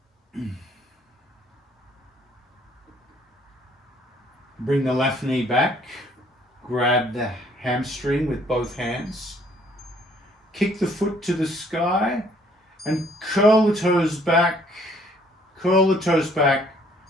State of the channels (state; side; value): normal; both; correlation 0.62